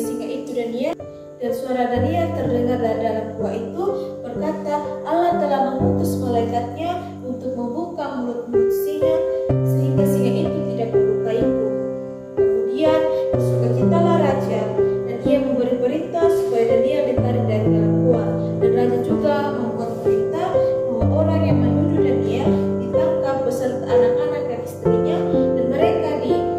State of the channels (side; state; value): both; identical; correlation 1.00